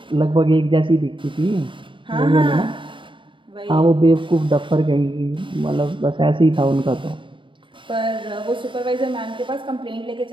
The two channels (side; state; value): left; late; 0.24 ms